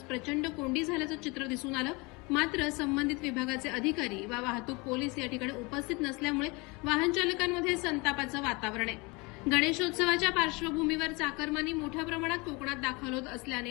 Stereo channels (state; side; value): quieter; right; 26.9 dB